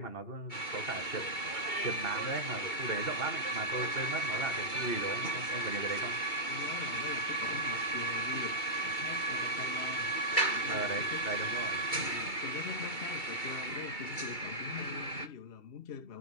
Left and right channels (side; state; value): right; late; 2.7 ms